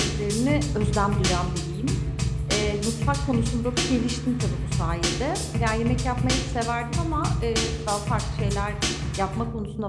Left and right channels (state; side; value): identical; both; correlation 1.00